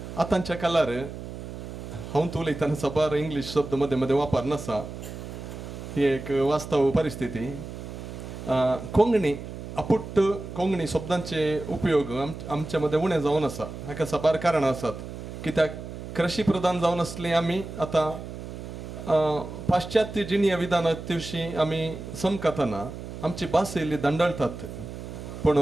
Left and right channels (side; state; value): right; noise; hum, 10 dB below the sound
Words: आतांच्या काळार हांव उलयतना सबार इंग्लीश शब्द मदें मदें वापर नासा ही एक वास्तव परिस्थिती. कोंकणी अपुट्ट कोंकणी शब्दांचे उपयोग आमच्या मदें उणें जावन आसा हाका सबार कारणां आसात कित्याक कृशी प्रधान जावन आसली आमी आतां पाश्चात्य जिणीय विधानां दिवशी आमी समकतना आमची भास येयली दंडळतात पूण